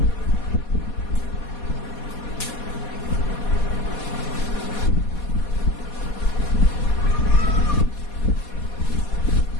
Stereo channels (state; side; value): late; right; 4.2 ms